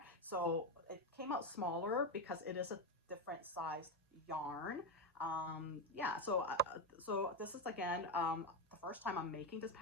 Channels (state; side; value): normal; both; correlation 0.11